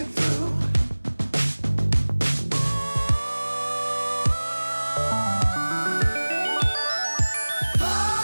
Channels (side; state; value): both; inverted; correlation -1.00